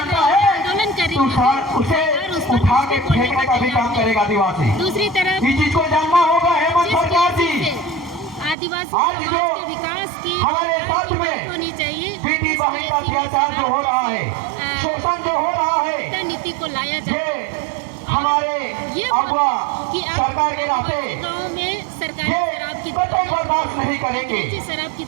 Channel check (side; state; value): left; drops out; at 8.6 s